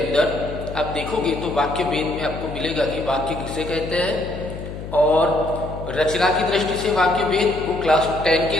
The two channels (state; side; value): noise; left; hum, 10 dB below the sound